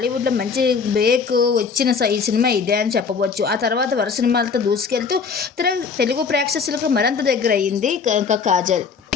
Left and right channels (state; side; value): quieter; right; 5.5 dB